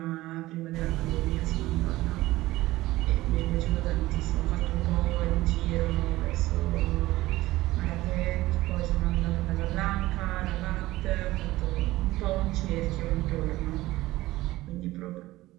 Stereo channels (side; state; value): left; quieter; 17.6 dB